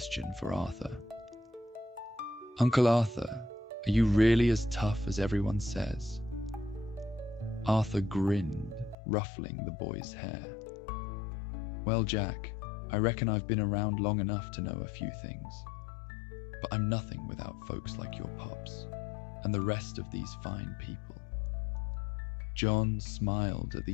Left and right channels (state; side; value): drops out; right; at 9.0 s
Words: for Arthur. Uncle Arthur, are you really as tough as everyone says? Arthur grinned, ruffling the boy's hair. Well, Jack, I reckon I've been around long enough to know a few things, but I'm nothing without folks like your pops and the rest of these fine people. John smiled at